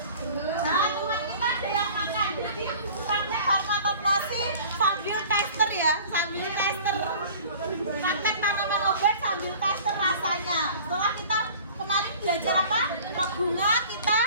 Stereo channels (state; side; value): inverted; both; correlation -0.45